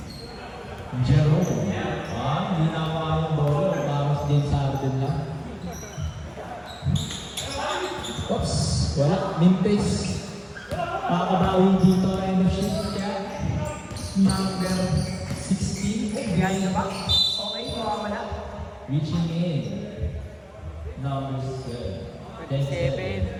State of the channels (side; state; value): both; identical; correlation 1.00